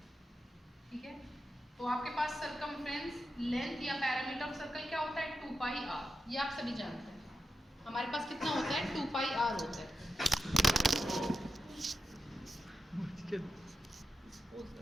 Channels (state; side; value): normal; both; correlation 0.88